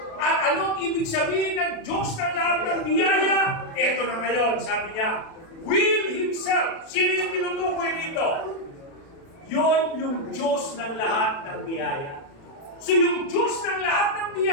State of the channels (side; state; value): right; late; 36 ms